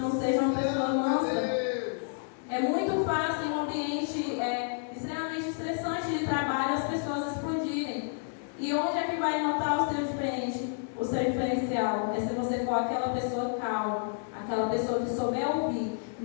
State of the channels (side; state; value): right; silent; digital silence